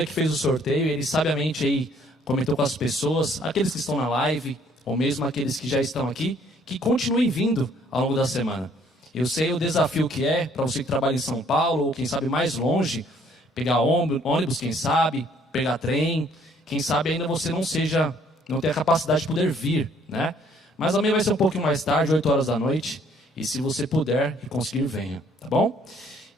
que fez o sorteio, ele sabiamente aí comentou com as pessoas, aqueles que estão na live, ou mesmo aqueles que já estão aqui, que continuem vindo ao longo da semana. Eu sei o desafio que é para você que trabalha em São Paulo, ou quem sabe mais longe, pegar ônibus, quem sabe, pegar trem, quem sabe ainda você não tem a capacidade de poder vir, né? Mas amanhã vai ser um pouquinho mais tarde, 8 horas da noite, e se você puder e conseguir, venha, tá bom?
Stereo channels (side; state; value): both; normal; correlation 0.62